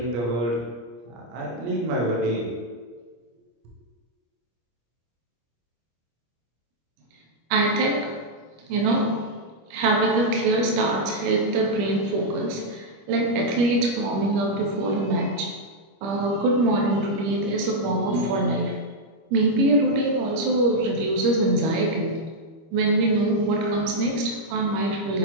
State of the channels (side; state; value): left; late; 25 ms